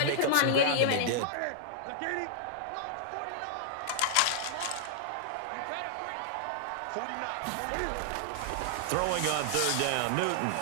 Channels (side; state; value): both; different; correlation -0.01